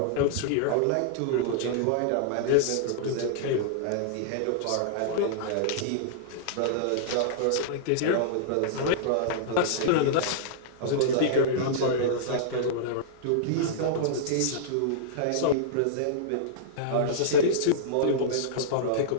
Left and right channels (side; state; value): both; different; correlation -0.02